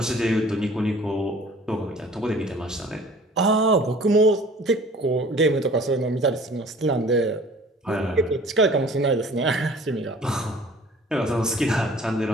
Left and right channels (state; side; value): normal; both; correlation 0.49